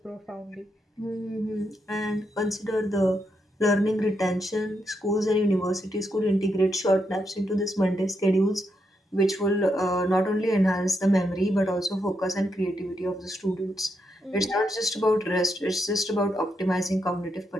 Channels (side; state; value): both; normal; correlation 0.81